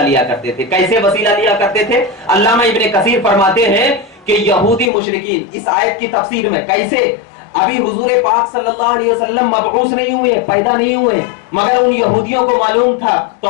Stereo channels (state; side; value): drops out; right; at 4.9 s